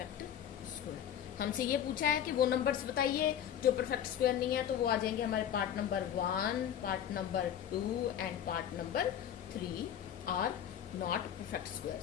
square. हमसे ये पूछा है कि वो नंबर्स बताइए जो परफेक्ट स्क्वायर नहीं है, तो वो आ जाएंगे हमारे part number 1, part number 2 and part number 3 are not perfect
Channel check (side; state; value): right; quieter; 9.8 dB